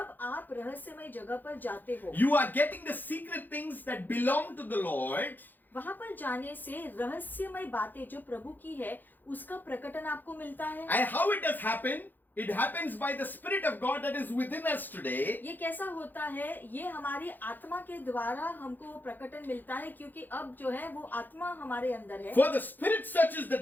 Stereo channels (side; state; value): right; late; 0.088 ms